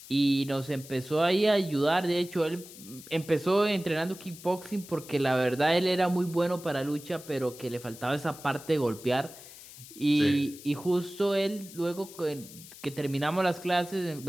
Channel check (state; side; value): noise; left; hiss, 17 dB below the sound